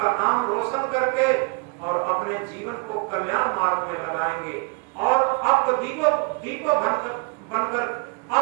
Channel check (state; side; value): quieter; left; 33.6 dB